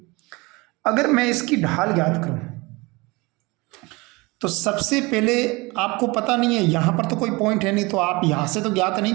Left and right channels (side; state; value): left; quieter; 24.5 dB